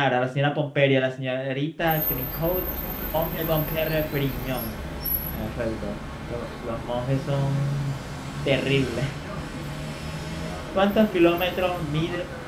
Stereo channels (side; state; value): both; identical; correlation 1.00